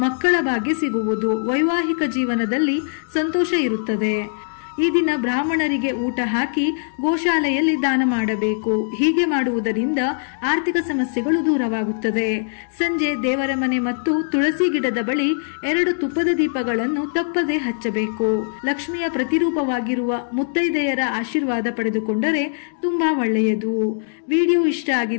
ಮಕ್ಕಳ ಭಾಗ್ಯ ಸಿಗುವುದು. ವೈವಾಹಿಕ ಜೀವನದಲ್ಲಿ ಸಂತೋಷ ಇರುತ್ತದೆ. ಈ ದಿನ ಬ್ರಾಹ್ಮಣರಿಗೆ ಊಟ ಹಾಕಿ ಗೋಶಾಲೆಯಲ್ಲಿ ದಾನ ಮಾಡಬೇಕು. ಹೀಗೆ ಮಾಡುವುದರಿಂದ ಆರ್ಥಿಕ ಸಮಸ್ಯೆಗಳು ದೂರವಾಗುತ್ತದೆ. ಸಂಜೆ ದೇವರ ಮನೆ ಮತ್ತು ತುಳಸಿ ಗಿಡದ ಬಳಿ 2 ತುಪ್ಪದ ದೀಪಗಳನ್ನು ತಪ್ಪದೆ ಹಚ್ಚಬೇಕು. ಲಕ್ಷ್ಮಿಯ ಪ್ರತಿರೂಪವಾಗಿರುವ ಮುತ್ತೈದೆಯರ ಆಶೀರ್ವಾದ ಪಡೆದುಕೊಂಡರೆ ತುಂಬಾ ಒಳ್ಳೆಯದು. ವಿಡಿಯೋ ಇಷ್ಟ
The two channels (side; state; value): right; silent; digital silence